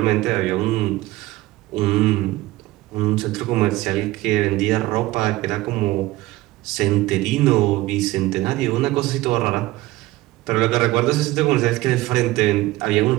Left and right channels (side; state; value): left; quieter; 18.1 dB